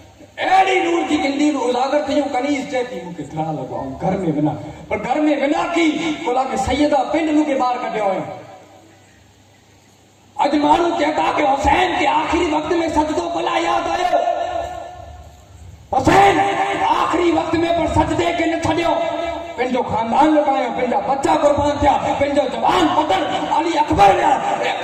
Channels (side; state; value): both; identical; correlation 1.00